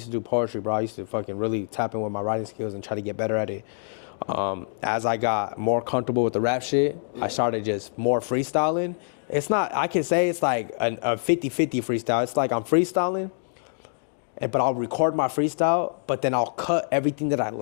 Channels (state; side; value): silent; right; digital silence